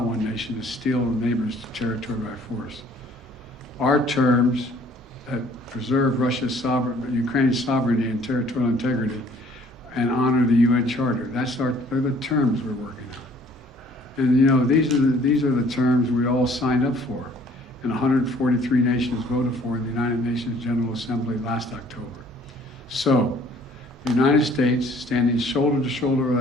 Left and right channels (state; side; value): normal; both; correlation 0.57